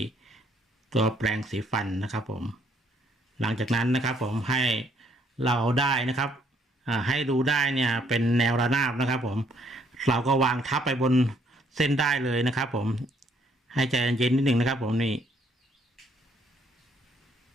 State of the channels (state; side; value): normal; both; correlation 0.67